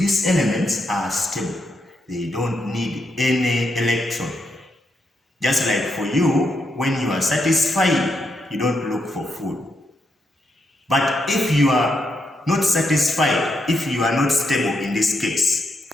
elements are stable. They don't need any electron. Just like for you, when you are satisfied, you don't look for food. But if you are not satisfied, if you are not stable in this case,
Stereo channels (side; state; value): both; normal; correlation 0.81